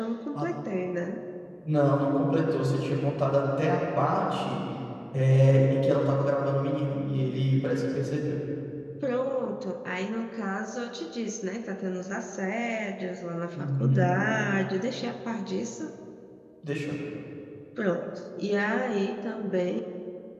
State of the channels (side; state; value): both; identical; correlation 1.00